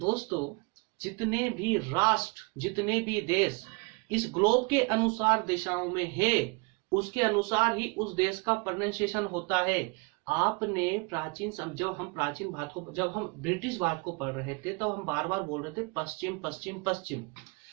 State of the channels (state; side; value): quieter; left; 28.9 dB